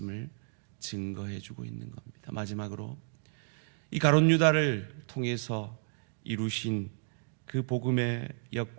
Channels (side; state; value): left; silent; 56 dB below the other